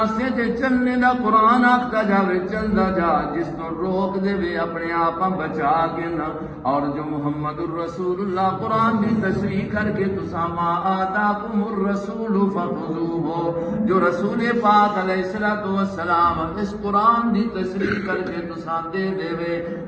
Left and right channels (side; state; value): both; identical; correlation 1.00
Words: تے چلنے دا قرآن آکھدا جاوے چلدا جا جس تو روک دے وے اپنے آپ بچا کے نہ اور جو محمد الرسول اللہ قرآن دی تشریح کر کے تسا ما آتاکم الرسول فخذوہ جو رسول پاک علیہ السلام اس قرآن دی تشریح کر کے تسا دے دے وے